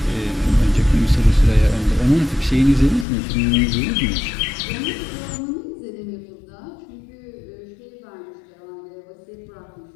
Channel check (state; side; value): drops out; right; at 3.1 s